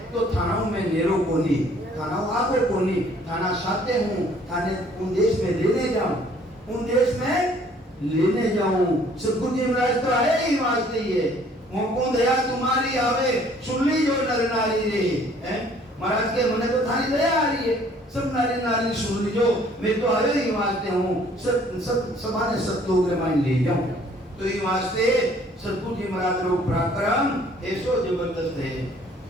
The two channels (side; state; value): both; normal; correlation 0.58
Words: तो थानाओं में नेरो कोनी थानाओं आगो कोनी थाना साथे हूँ थाने उन देश में लेने जाऊं उन देश में लेने जाऊं। सतगुरु जी महाराज तो आए ही वास्ते ही है, मोको दया तुम्हारी आवे सुन ली जो नर नारी रे, हैं महाराज के मने तो थारी दया आ रही है, सब नारी नारी सुन लीजो, मैं तो आए ही वास्ते हूँ, सब समाने सब लोग रे मान ले जाऊं। तो ये वास्ते सतगुरु जी महाराज रो पराक्रम ऐसो जबरदस्त